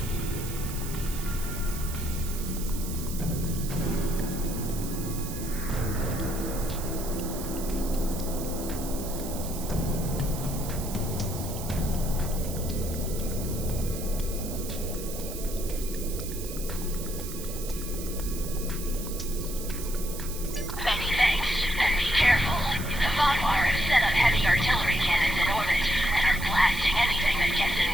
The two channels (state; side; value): noise; right; hiss, 10 dB below the sound